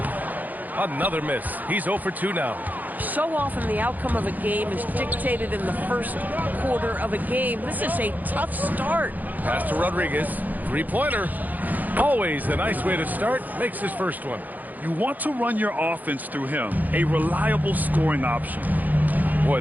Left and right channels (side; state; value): left; late; 0.082 ms